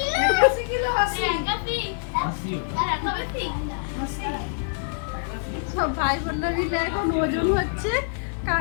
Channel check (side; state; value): right; silent; 59 dB below the other